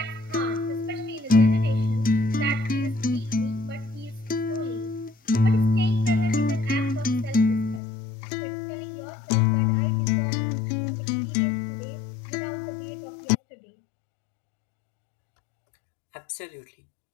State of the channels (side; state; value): right; drops out; at 7.8 s